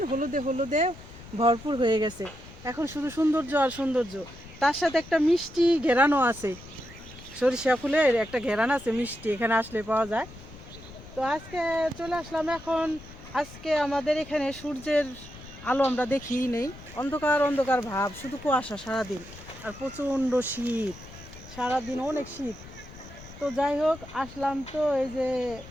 হলুদে হলুদে ভরপুর হয়ে গেছে। এখন শুধু সৌন্দর্য আর সৌন্দর্য, তার সাথে একটা মিষ্টি ঘেরানো আছে। সরিষা ফুলের একটা ঘেরান আছে মিষ্টি, এখানে আসলে পাওয়া যায়। তো আজকে চলে আসলাম এখন। আজকে আমাদের এখানে সূর্যের আলো আমরা দেখিই নেই, অন্ধকার অন্ধকার ভাব, শুধু কুয়াশা সারাদিন, আর প্রচণ্ড শীত, সারাদিন অনেক শীত। তো যাই হোক, আসলাম তো এই যে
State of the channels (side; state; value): left; noise; rumble, 17 dB below the sound